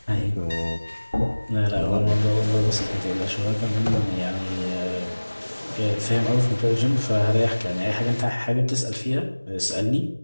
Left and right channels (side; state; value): both; inverted; correlation -1.00